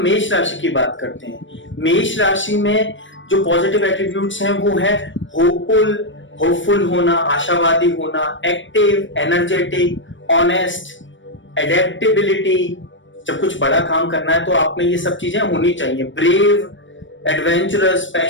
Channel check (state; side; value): late; right; 0.56 ms